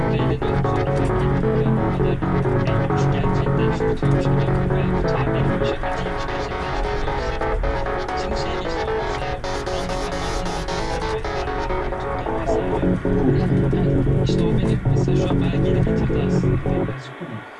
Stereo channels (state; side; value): identical; both; correlation 1.00